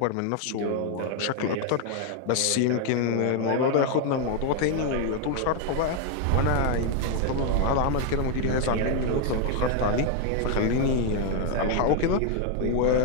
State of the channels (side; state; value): both; different; correlation 0.01